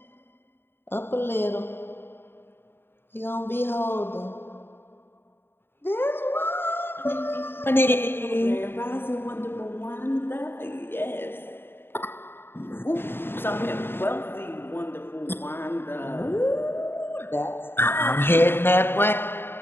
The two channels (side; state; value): right; late; 0.11 ms